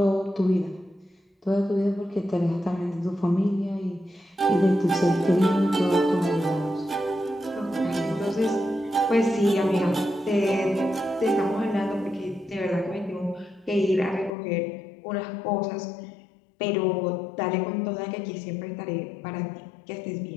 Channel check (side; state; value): right; drops out; at 14.3 s